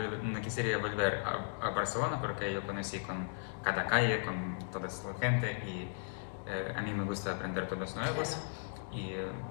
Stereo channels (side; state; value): right; silent; digital silence